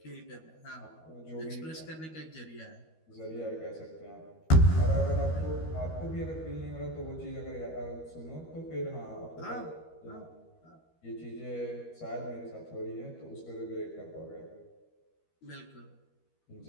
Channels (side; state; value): right; late; 13 ms